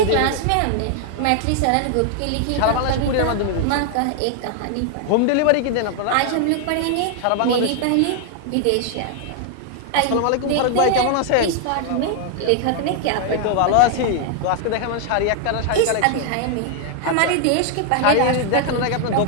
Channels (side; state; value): both; different; correlation 0.00